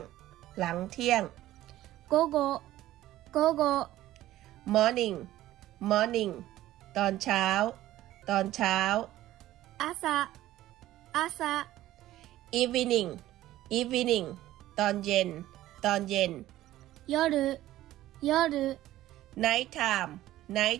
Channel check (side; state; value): left; quieter; 14.8 dB